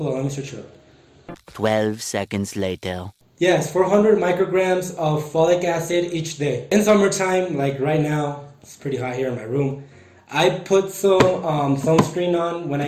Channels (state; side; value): identical; both; correlation 1.00